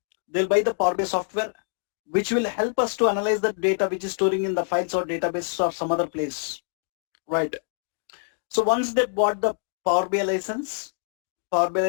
They'll buy the Power BI software, which will help us to analyze the data which is storing in the files or databases or some other place, right? So once they bought the Power BI license,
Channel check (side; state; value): right; silent; digital silence